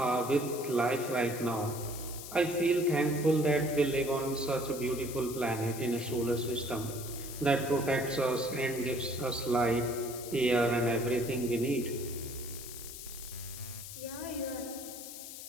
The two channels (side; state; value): left; noise; hiss, 11 dB below the sound